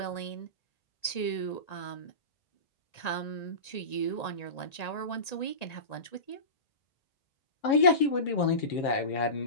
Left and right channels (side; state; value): right; late; 1.9 ms